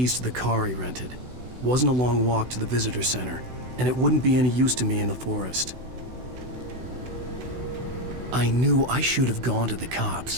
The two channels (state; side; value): late; left; 16 ms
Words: to the car he rented. Wasn't a long walk to the visitor center, and it wouldn't be any use to me in the forest. I knew I should have gone to the